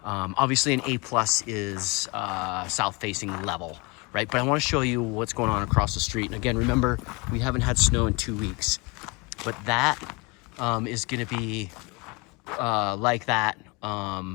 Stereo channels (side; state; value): right; quieter; 27.2 dB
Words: Obviously an A+ is south facing level, right? But I want to show you what's going on across the street. And again, remember, we haven't had snow in 2 weeks, but that is going to be like that